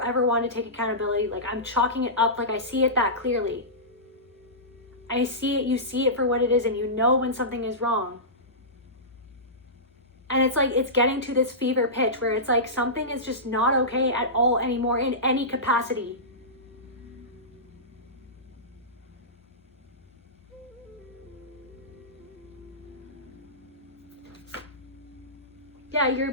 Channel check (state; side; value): normal; both; correlation -0.18